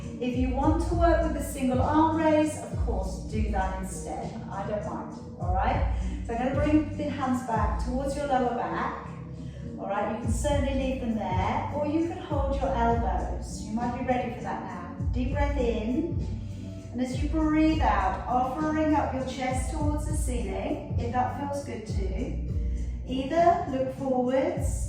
If you want to work with a single arm raise, of course, do that instead. I don't mind, all right? So I'm going to bring the hands back towards your lower back. All right, you can certainly leave them there, or you can hold your elbows. You might be ready for that now. Deep breath in, and as you breathe out, offering up your chest towards the ceiling, if that feels good too. Either look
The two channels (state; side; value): identical; both; correlation 1.00